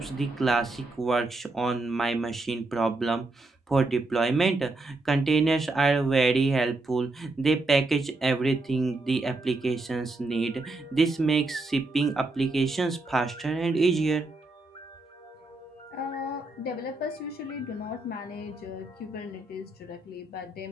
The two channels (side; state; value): left; quieter; 3.0 dB